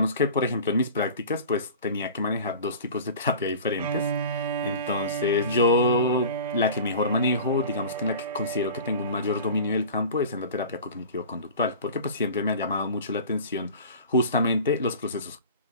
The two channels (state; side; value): inverted; both; correlation -0.38